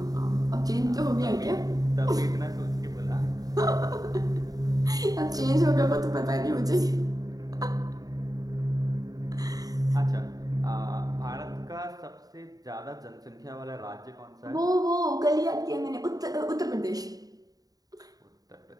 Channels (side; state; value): left; late; 0.18 ms